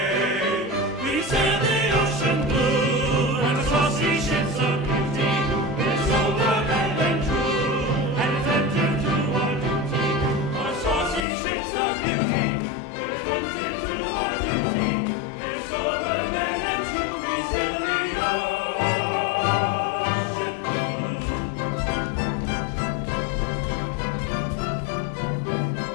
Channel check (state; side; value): drops out; right; at 11.2 s